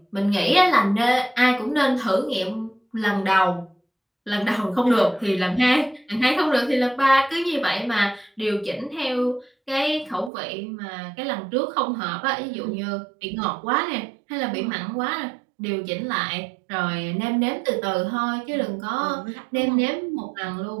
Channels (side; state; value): left; drops out; at 10.3 s